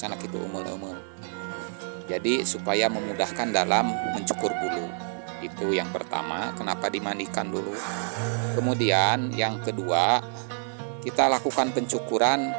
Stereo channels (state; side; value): silent; left; 60 dB below the other